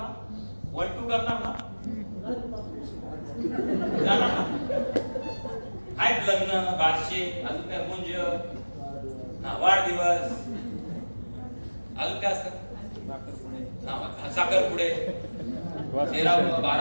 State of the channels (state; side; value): inverted; both; correlation -1.00